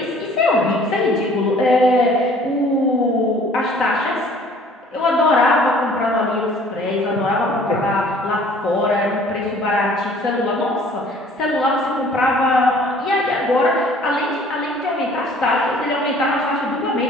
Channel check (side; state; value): both; normal; correlation 0.53